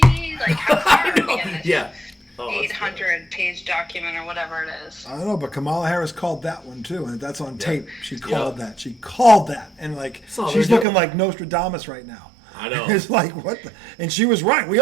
Like how far are we in this? 800-page document or whatever it is. I don't know, but Kamala Harris called that one too, and that's on tape. She called that. She called that, and like she's looking like Nostradamus right now. I know. It's like what the, and she was right. We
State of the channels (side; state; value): left; drops out; at 10.9 s